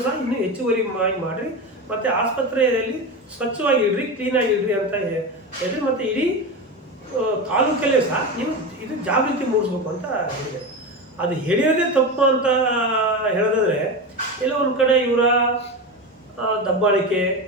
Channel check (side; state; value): both; normal; correlation 0.21